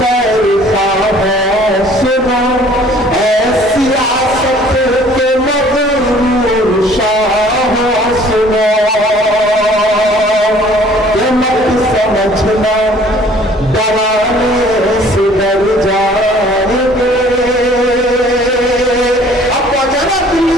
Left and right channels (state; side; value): normal; both; correlation 0.54